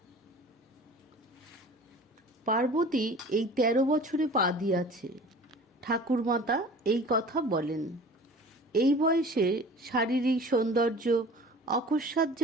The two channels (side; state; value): both; normal; correlation 0.43